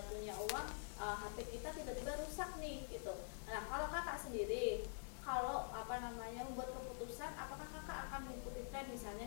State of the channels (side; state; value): right; silent; digital silence